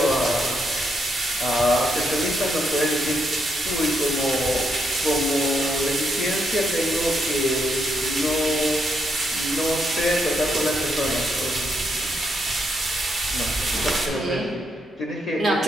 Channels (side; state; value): both; normal; correlation 0.78